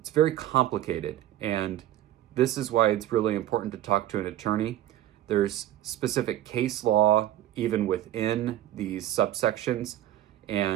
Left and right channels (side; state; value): left; quieter; 13.1 dB